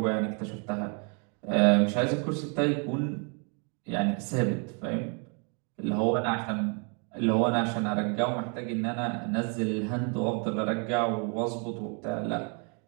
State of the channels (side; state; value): left; quieter; 36.8 dB